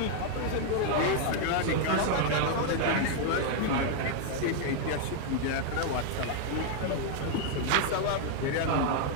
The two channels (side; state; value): both; different; correlation 0.00